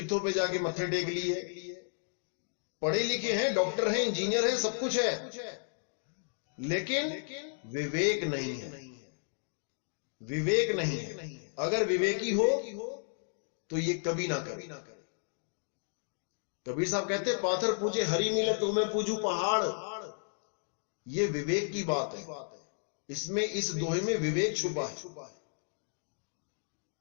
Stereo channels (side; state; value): right; silent; digital silence